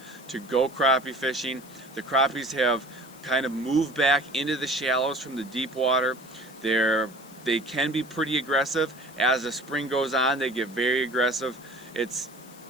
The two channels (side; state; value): left; noise; hiss, 23 dB below the sound